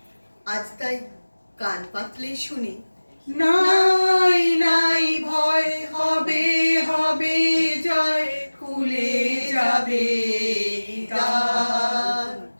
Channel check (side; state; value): both; inverted; correlation -1.00